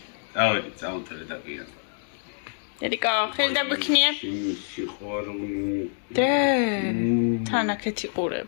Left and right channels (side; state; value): right; silent; digital silence